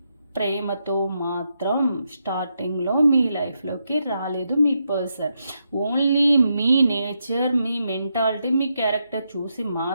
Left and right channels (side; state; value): both; inverted; correlation -0.82